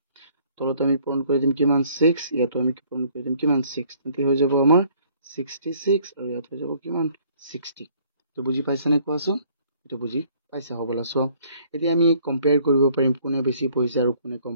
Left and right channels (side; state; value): both; inverted; correlation -0.60